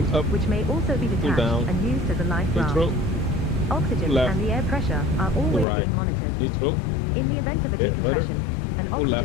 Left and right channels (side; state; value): right; drops out; at 5.7 s